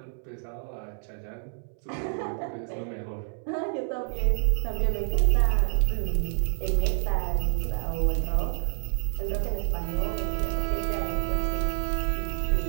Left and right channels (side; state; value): left; silent; 59 dB below the other